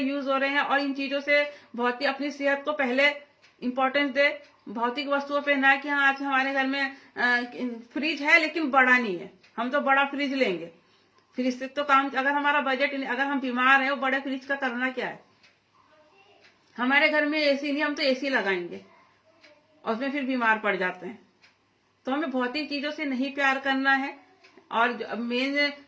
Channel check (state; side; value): identical; both; correlation 1.00